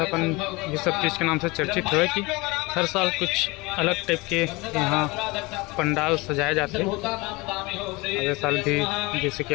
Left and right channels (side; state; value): right; quieter; 24.1 dB